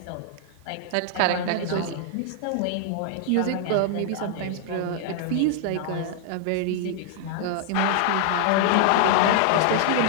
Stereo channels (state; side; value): different; both; correlation 0.00